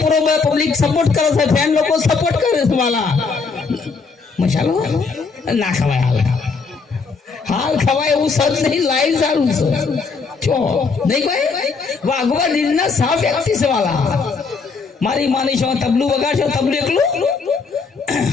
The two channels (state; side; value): quieter; right; 4.8 dB